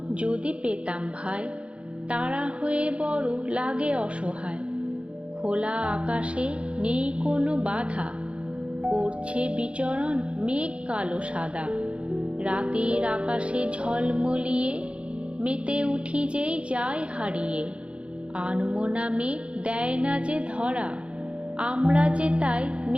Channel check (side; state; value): left; late; 0.059 ms